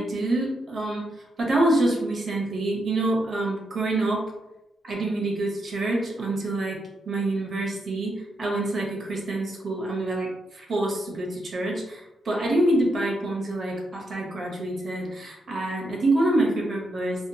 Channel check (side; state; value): both; normal; correlation 0.81